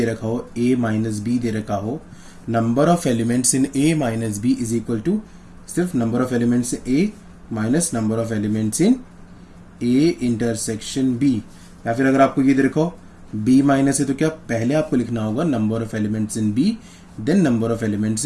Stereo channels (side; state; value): both; identical; correlation 1.00